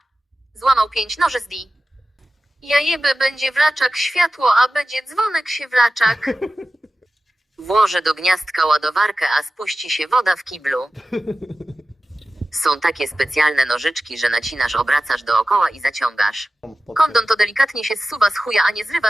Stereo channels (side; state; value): both; normal; correlation 0.95